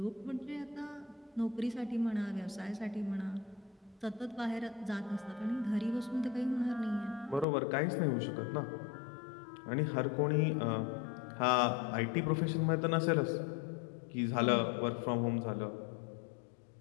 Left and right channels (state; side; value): drops out; right; at 7.5 s